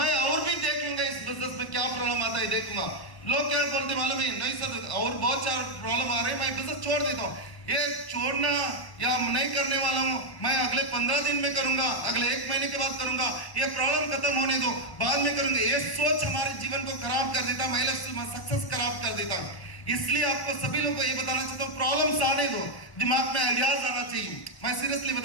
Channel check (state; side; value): late; right; 1.1 ms